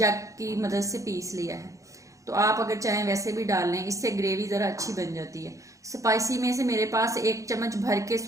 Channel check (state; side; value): late; left; 0.16 ms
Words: की मदद से पीस लिया है। तो आप अगर चाहें वैसे भी डाल लें, इससे ग्रेवी ज़रा अच्छी बन जाती है। स्पाइसी में से मेरे पास 1 चम्मच भर के